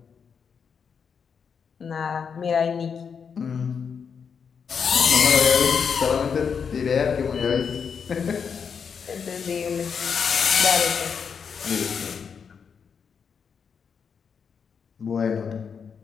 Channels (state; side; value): quieter; right; 6.5 dB